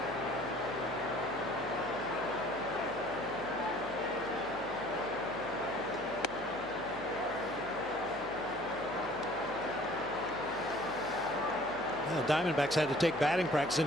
Diamondbacks had to take batting practice in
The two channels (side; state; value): left; noise; hum, 20 dB below the sound